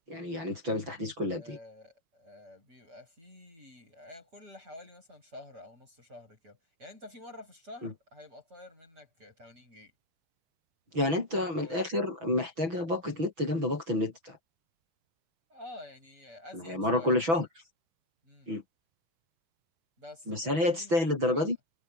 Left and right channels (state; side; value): late; left; 6.1 ms